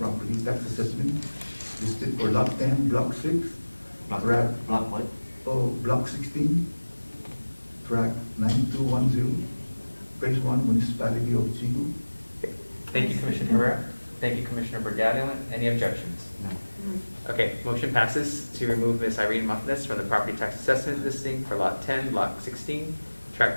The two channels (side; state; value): both; inverted; correlation -1.00